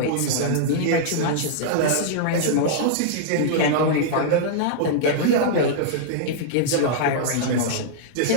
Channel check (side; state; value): both; different; correlation -0.02